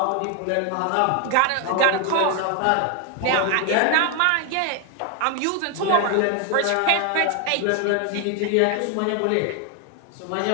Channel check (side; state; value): both; different; correlation 0.00